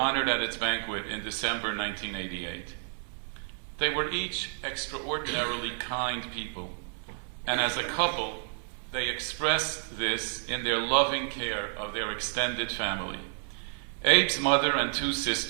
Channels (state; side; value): silent; left; 58 dB below the other